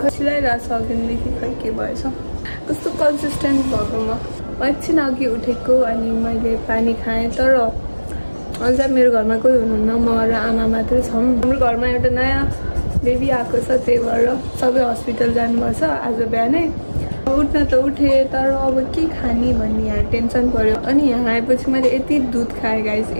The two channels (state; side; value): inverted; both; correlation -1.00